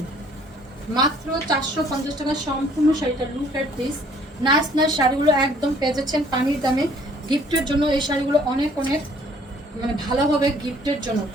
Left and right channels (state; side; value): normal; both; correlation 0.59